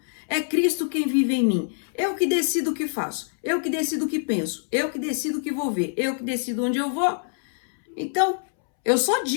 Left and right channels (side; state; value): right; silent; 62 dB below the other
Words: é Cristo quem vive em mim, eu que decido o que faço, eu que decido o que penso, eu que decido o que vou ver, eu que decido onde eu vou, Então, eu só